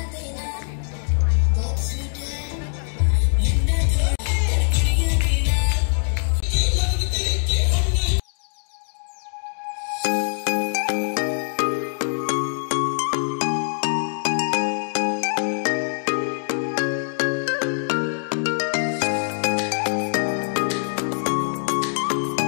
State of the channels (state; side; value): silent; right; digital silence